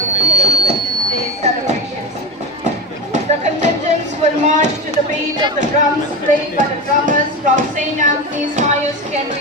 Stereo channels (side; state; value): both; normal; correlation 0.20